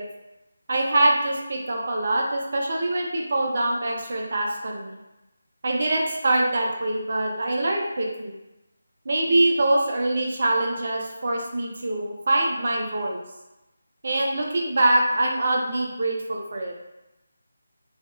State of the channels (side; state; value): both; inverted; correlation -0.92